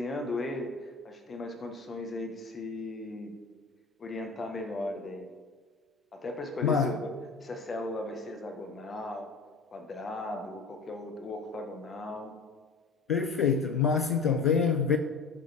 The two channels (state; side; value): quieter; right; 4.4 dB